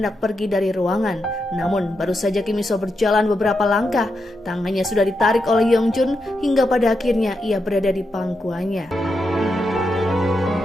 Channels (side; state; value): both; normal; correlation 0.85